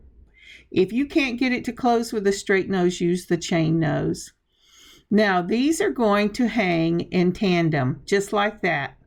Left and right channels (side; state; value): both; identical; correlation 1.00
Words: If you can't get it to close with a straight nose, use the chain nose. Now these are going to hang in tandem, just like that.